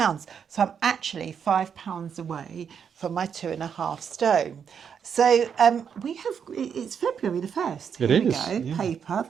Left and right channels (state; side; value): quieter; left; 7.4 dB